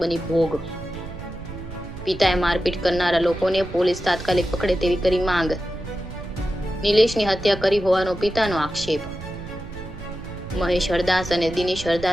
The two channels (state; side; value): noise; right; rumble, 12 dB below the sound